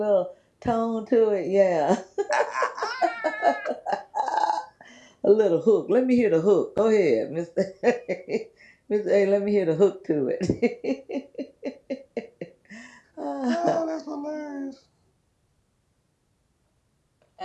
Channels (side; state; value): both; identical; correlation 1.00